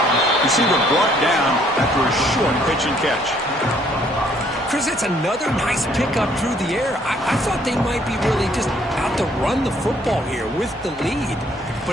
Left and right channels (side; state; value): both; normal; correlation 0.64